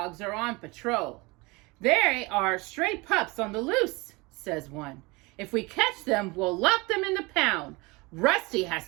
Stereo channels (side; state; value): left; quieter; 25.1 dB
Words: are on patrol. They are stray pups on the loose, says one. If we catch them, we'll lock them in the pound. Rusty